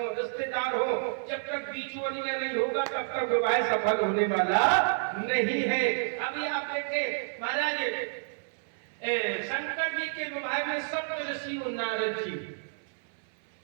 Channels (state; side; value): silent; left; 58 dB below the other